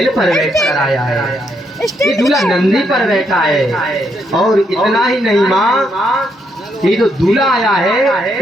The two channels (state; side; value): normal; both; correlation 0.76